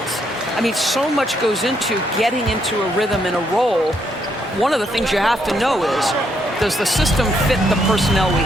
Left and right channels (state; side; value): normal; both; correlation 0.74